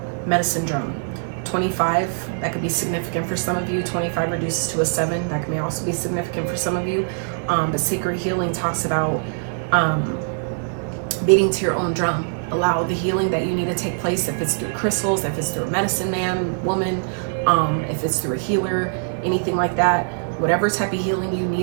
Medicine drum. 25, that could be significant for some of you. 25 reduces to a 7, that may also be significant for some of you. But sacred healing talks about beating to your own drum. Allow the healing that you need to take place, if it's through crystals, if it's through a medicine man, woman, if it's through a healer, anything like that. Whatever type of healing you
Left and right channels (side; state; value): left; silent; digital silence